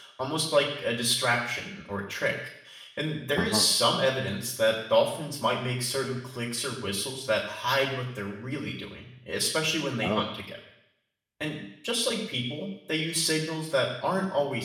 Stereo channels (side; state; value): both; identical; correlation 1.00